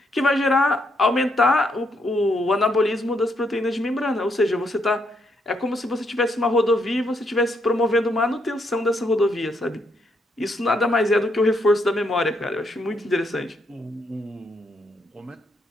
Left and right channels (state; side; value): normal; both; correlation 0.76